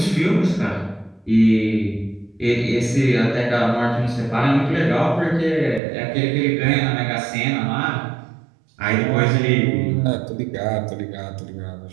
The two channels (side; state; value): left; drops out; at 5.8 s